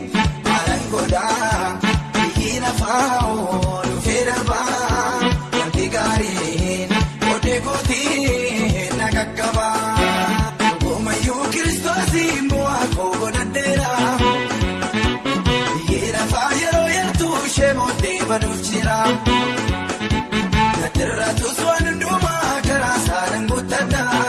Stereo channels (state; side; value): identical; both; correlation 1.00